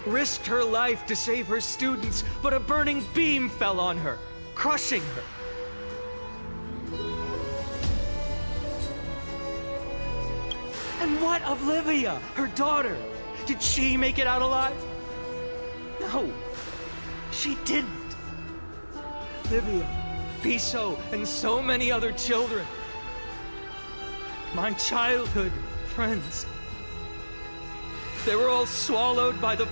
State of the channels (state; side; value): inverted; both; correlation -1.00